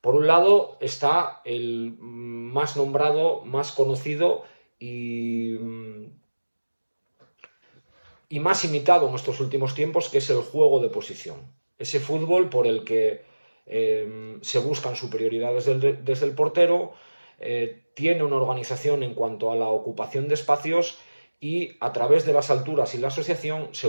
Por un lado está el más nombrado, más conocido y más imitado en estos últimos tiempos, que es el juego de posición. Ese fútbol por el que se buscan superioridades desde el portero, tiene una organización en cuanto a la ocupación de espacios y a través de las alturas y la asociación se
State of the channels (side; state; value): both; inverted; correlation -1.00